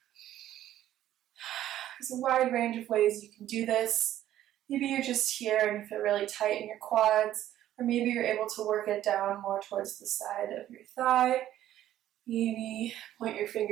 There's a wide range of ways you can do this. Maybe you're just here and you feel really tight in your quads, or maybe you're able to work it down more towards the side of your thigh. Maybe point your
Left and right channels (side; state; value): left; quieter; 12.6 dB